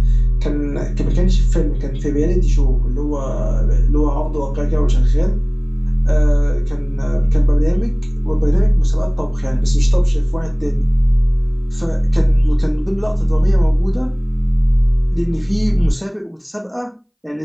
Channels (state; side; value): identical; both; correlation 1.00